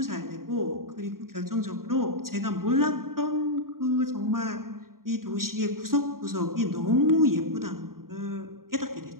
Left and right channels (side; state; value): left; late; 0.92 ms